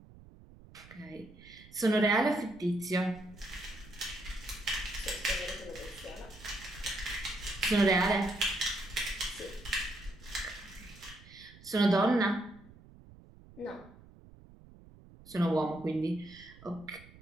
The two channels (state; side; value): noise; right; rumble, 21 dB below the sound